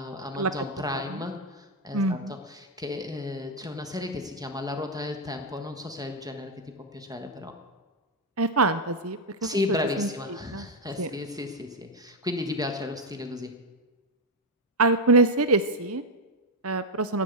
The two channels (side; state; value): both; normal; correlation 0.03